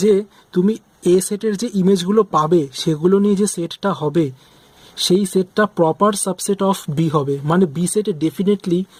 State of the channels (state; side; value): identical; both; correlation 1.00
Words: তুমি এ সেটের যে ইমেজগুলো পাবে সেগুলো নিয়ে যে সেটটা হবে সেই সেটটা প্রপার সাবসেট অফ বি হবে, মানে বি সেটে ডেফিনেটলি